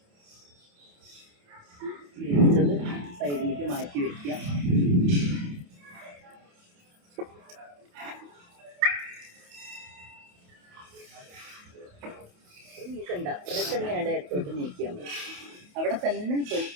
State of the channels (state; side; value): late; left; 28 ms